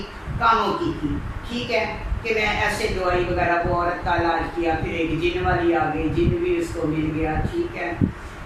कामों की थी, ठीक है, कि मैं ऐसे दवाई वगैरह वो औरत का इलाज किया, फिर एक जिन वाली आ गई, जिन भी उसको मिल गया, ठीक है।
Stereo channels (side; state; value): both; identical; correlation 1.00